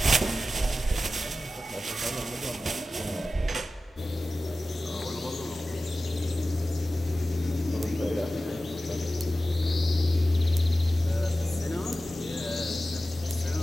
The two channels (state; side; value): normal; both; correlation 0.94